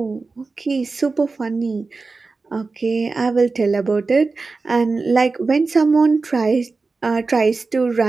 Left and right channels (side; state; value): left; quieter; 4.0 dB